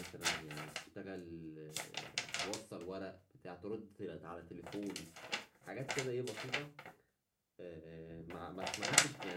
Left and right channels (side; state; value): both; identical; correlation 1.00